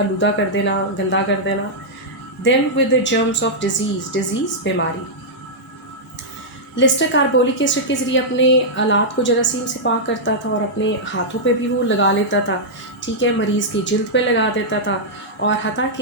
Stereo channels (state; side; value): normal; both; correlation -0.08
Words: कर देना, गंदा कर देना, them with the germs of disease बीमारी। Leicester carbolic acid के ज़रिए अपने आलात को जरासीम से पाक करता था और अपने हाथों पे भी वो लगा लेता था, ठीक है। मरीज़ की जिल्द पे लगा देता था, और हता